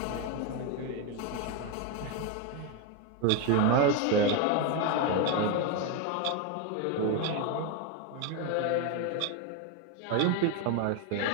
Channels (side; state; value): both; different; correlation 0.02